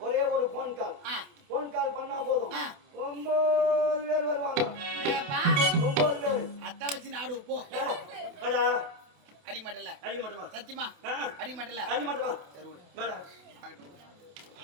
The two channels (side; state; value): left; late; 28 ms